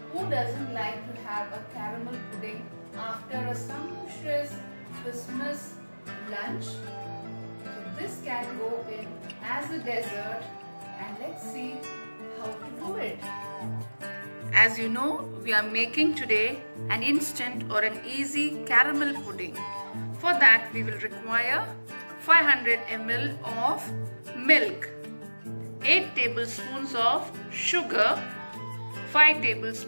Who doesn't like to have a caramel pudding after a sumptuous Christmas lunch? So this can go in as a dessert, and let's see how to do it. As you know, we are making today an instant or an easy caramel pudding. For that we will require 500 ml of milk, 8 tablespoons of sugar, 5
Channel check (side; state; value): both; inverted; correlation -1.00